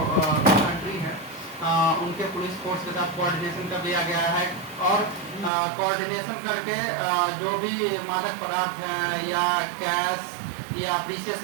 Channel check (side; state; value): left; drops out; at 5.5 s